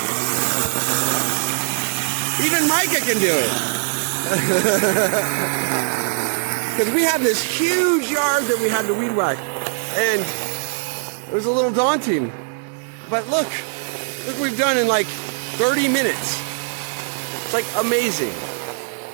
Even Micah can do it. Because we had this huge yard that we had to weed whack, and it was a little daunting. But look what we've done in like 30 minutes. It's like amazing.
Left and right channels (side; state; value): left; silent; digital silence